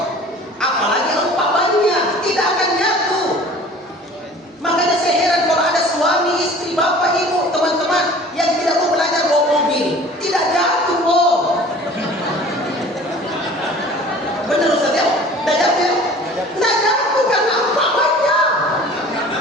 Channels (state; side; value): normal; both; correlation 0.46